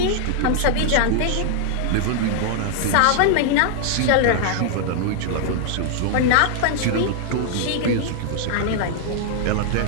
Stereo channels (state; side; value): different; both; correlation -0.01